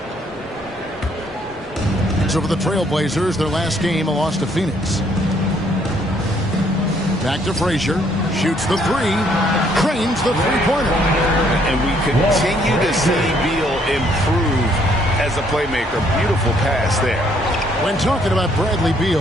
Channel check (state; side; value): normal; both; correlation 0.67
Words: So for the Trailblazers, their last game, a loss to Phoenix. Back to Frazier. Shoots the 3. Cranes the three-pointer. And we continue to see Beal improve as a playmaker. Beautiful pass there. When talking about Bradley